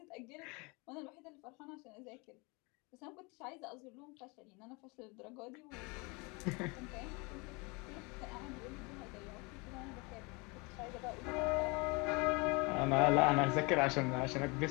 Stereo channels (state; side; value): quieter; right; 28.3 dB